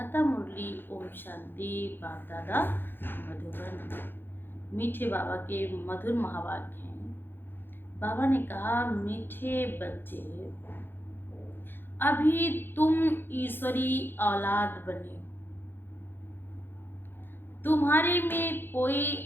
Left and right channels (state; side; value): late; right; 0.10 ms